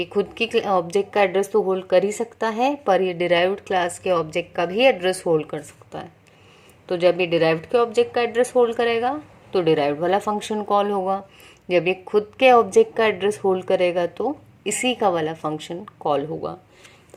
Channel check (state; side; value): identical; both; correlation 1.00